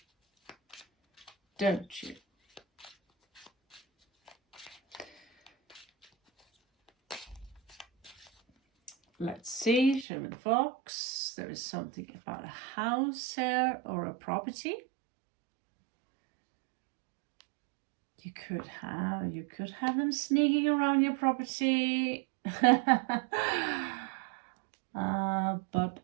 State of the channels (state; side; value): drops out; left; at 10.1 s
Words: Don't you? Let's see, show me the fox. There is something about a house here or a property. You could have them sneaking around your property. But